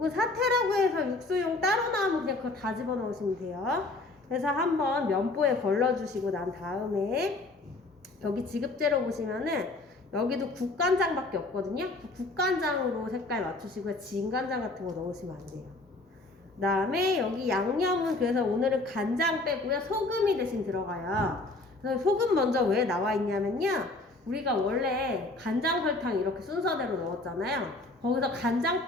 사태라고 해서 육수용 따로 나오면 그냥 그거 다 집어넣으시면 돼요. 그래서 한번 면보에 걸러주시고 난 다음에 여기 지급재료 보시면은 여기도 국간장밖에 없거든요. 국간장으로 색깔 맞추시고요. 진간장 같은 거 넣으시면 안 돼요. 그 다음에 여기 양념은 그래서 오늘은 간장 빼고요. 소금이 대신 들어가요. 그래서 소금 먼저 왜 나와 있냐면요. 우리가 원래 간장 설탕 이렇게 순서대로 넣었잖아요. 거기서 간장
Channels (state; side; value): quieter; right; 3.0 dB